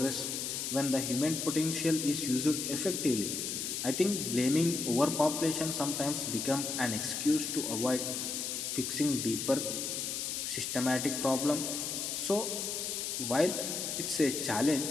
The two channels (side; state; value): left; noise; hiss, 3 dB below the sound